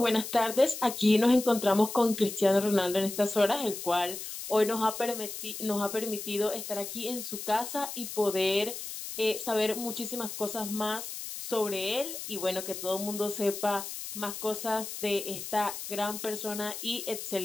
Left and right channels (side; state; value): left; noise; hiss, 8 dB below the sound